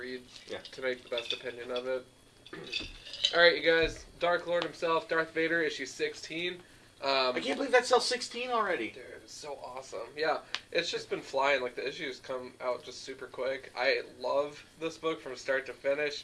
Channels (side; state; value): both; identical; correlation 1.00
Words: to make the best opinion of it. All right, you guys. Dark Lord himself, Darth Vader, issue 16. I can't believe that sells 16 already. Dude, it's so awesome. Yeah, it's just been flying. Like the issues come out just super quick. I love this book from start to